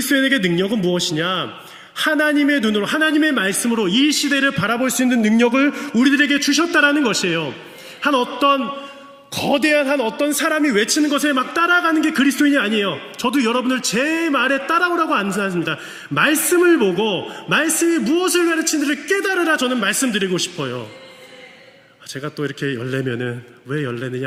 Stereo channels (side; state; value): both; identical; correlation 1.00